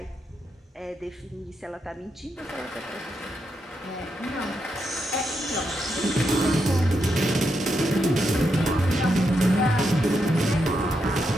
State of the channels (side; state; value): both; normal; correlation 0.83